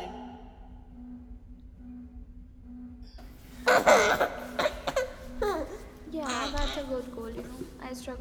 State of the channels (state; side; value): identical; both; correlation 1.00